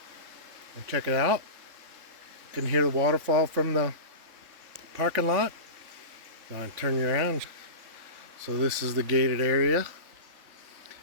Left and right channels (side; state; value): left; late; 3.5 ms